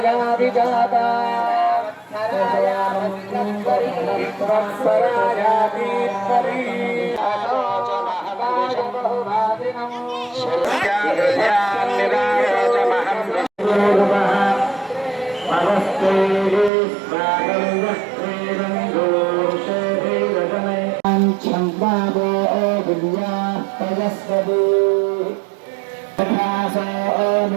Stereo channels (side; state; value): left; drops out; at 16.7 s